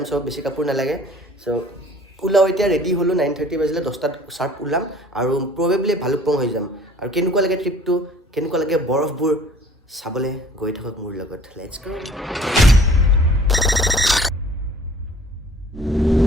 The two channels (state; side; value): normal; both; correlation 0.51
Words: চ' বেছি কাপোৰ নালাগে চ' ওলাওঁ এতিয়া ৰেডি হ'লোঁ 9:30 বাজিলে 10টাত চাৰ্প ওলাম আৰু প্ৰবেবলি ভালুকপুং হৈ যাম আৰু কেনেকুৱা লাগে ট্ৰিপটো কেনেকুৱা লাগে বৰফবোৰ চাবলৈ গৈ থাকক মোৰ লগত লেটছ গো